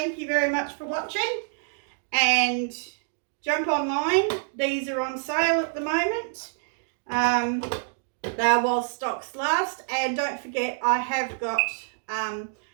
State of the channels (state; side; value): silent; left; digital silence